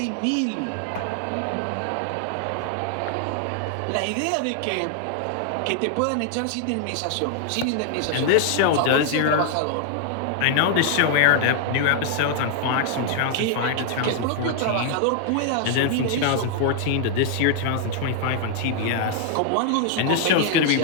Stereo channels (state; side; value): different; both; correlation 0.00